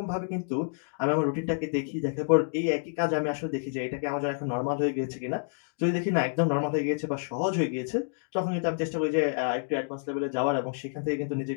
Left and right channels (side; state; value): right; silent; digital silence